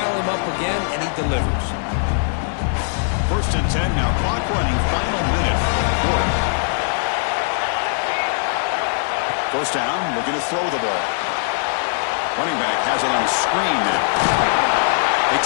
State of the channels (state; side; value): silent; right; digital silence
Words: him up again, and he delivers. First and 10 now. Clock running. Final minute of the quarter. First down. Looking to throw the ball. Running back has it on the screen now. They